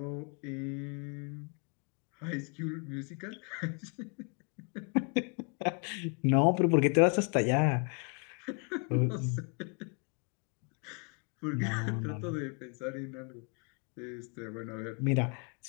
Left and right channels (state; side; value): quieter; right; 36.8 dB